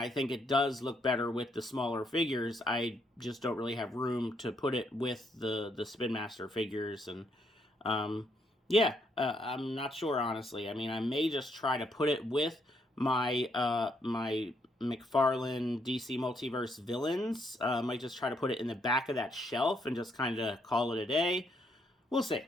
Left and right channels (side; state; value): both; normal; correlation 0.74